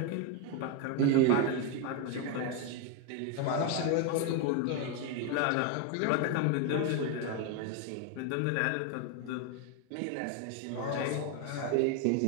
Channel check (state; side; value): different; both; correlation 0.01